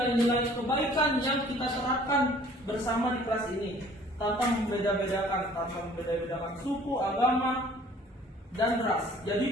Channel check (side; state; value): both; normal; correlation 0.53